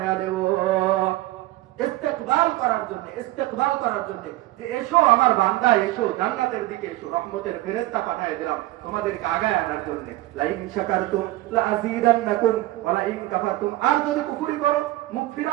দেব ইস্তেকবাল করার জন্য যে এসো আমার বান্দা, এসো জান্নাতের দিকে এসো, রহমতের ফেরেশতা পাঠিয়ে দিলাম তোমাদেরকে আগায় আনার জন্য। লা ইন শাকারতুম লা আযীদান্নাকুম ওয়া লা ইন কাফারতুম, আর যদি কুফরি করো, মুখ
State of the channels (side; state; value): left; quieter; 17.4 dB